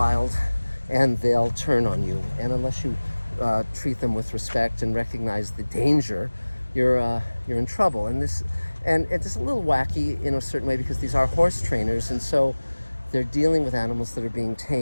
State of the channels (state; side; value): inverted; both; correlation -1.00